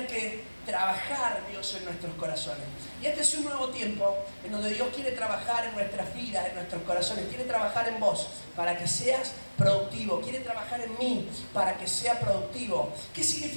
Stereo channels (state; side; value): inverted; both; correlation -1.00